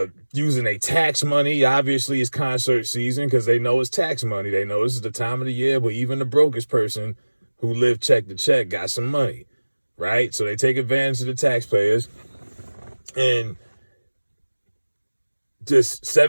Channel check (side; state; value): both; inverted; correlation -1.00